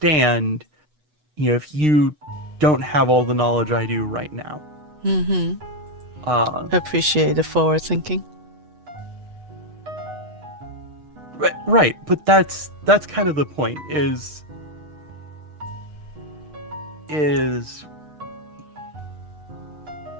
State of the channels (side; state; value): left; late; 8.1 ms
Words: if you don't have all the knowledge I do right now. Appreciate the forward thinking. Right, but that's kind of the point, is is